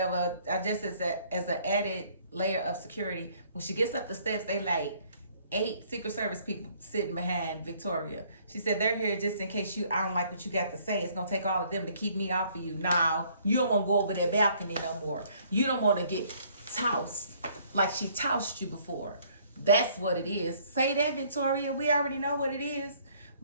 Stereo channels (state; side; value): inverted; both; correlation -0.62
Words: I just as an added layer of security. When she gets up the steps, they like 8 Secret Service people sitting behind Victoria. She said, they're here just in case I don't like what you got to say. It's going to take all of them to keep me off of you. Now, you don't want to go over that balcony no more. You don't want to get tossed like she tossed you before. That's what it is. Say that, Victoria. We already know what it is.